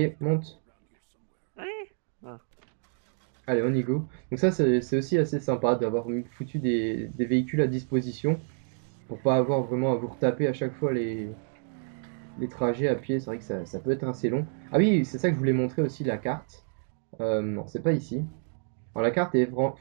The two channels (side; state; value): left; silent; 59 dB below the other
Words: monte. Allez. Ah. Allez, on y go. Donc ça, c'est aussi assez sympa d'avoir foutu des véhicules à disposition pour pas avoir vraiment à vous retaper à chaque fois les trajets à pied. C'est vrai que ça peut être assez long. Ah oui, c'est ça que je voulais montrer aussi, la carte. Non, c'est pas ici. Alors la carte est